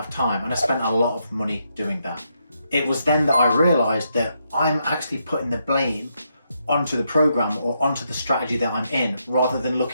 of time. And I spent a lot of money doing that. It was then that I realized that I'm actually putting the blame onto the program or onto the strategy that I'm in, rather than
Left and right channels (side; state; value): both; inverted; correlation -0.80